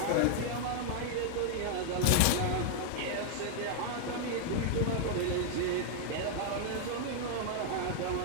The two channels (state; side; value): different; both; correlation 0.00